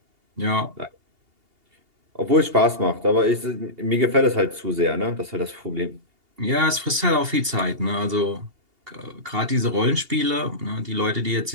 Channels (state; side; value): late; left; 2.8 ms